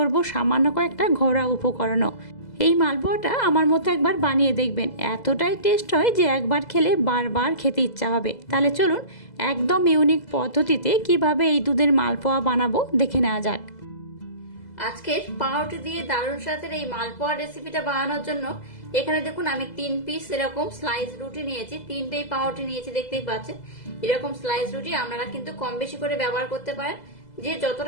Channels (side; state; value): right; late; 2.0 ms